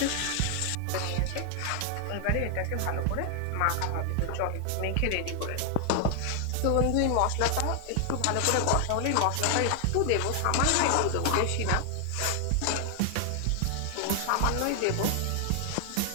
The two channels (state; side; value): different; both; correlation 0.00